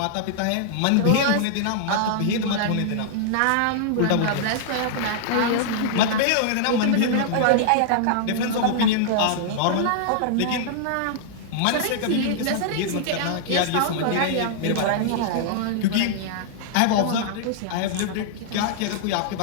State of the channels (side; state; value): both; different; correlation -0.01